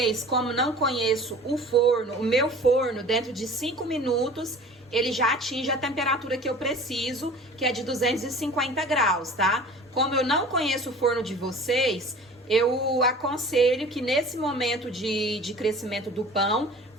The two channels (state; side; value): normal; both; correlation 0.43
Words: como não conheço o forno, o meu forno, dentro de 5 minutos, ele já atinge a temperatura que eu preciso, que é de 250 graus, tá? Como eu não conheço o forno de vocês, eu aconselho que nesse momento de crescimento do pão,